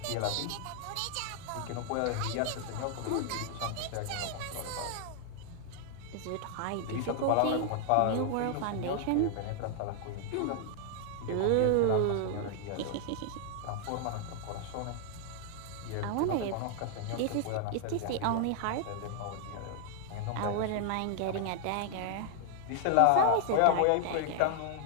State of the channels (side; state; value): both; different; correlation 0.00